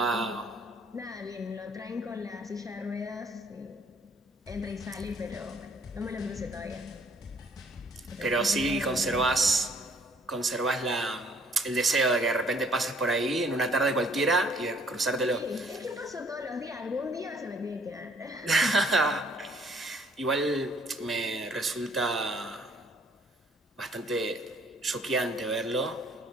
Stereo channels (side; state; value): both; normal; correlation 0.61